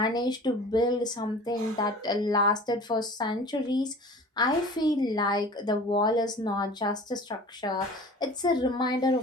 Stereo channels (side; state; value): both; normal; correlation 0.42